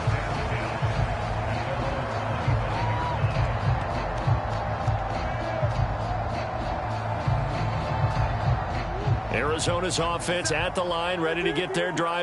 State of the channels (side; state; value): both; identical; correlation 1.00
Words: Arizona's offense at the line, ready to get their